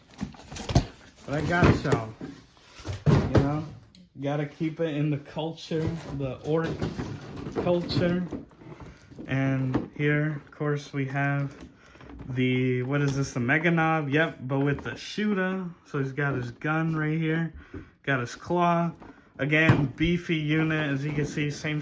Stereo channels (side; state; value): both; identical; correlation 1.00